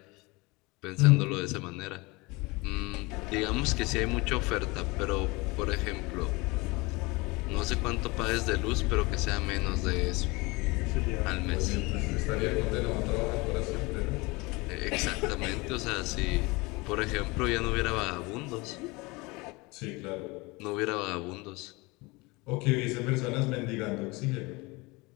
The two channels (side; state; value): right; quieter; 24.7 dB